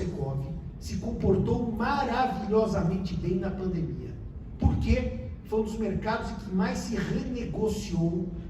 se comportou maravilhosamente bem na pandemia. Por quê? Foi um dos mercados em que mais se renegociou,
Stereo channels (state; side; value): identical; both; correlation 1.00